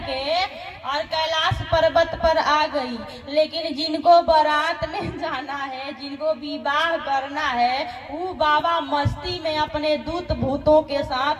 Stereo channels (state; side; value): identical; both; correlation 1.00